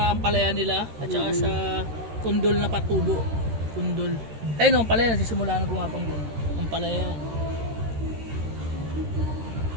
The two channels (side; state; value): left; late; 13 ms